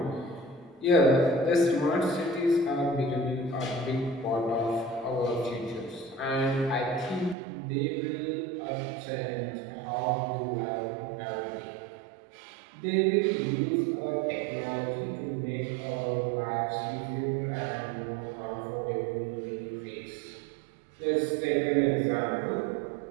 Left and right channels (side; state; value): left; drops out; at 7.4 s